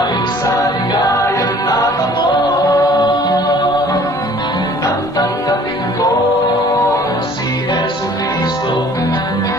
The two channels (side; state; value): both; normal; correlation 0.53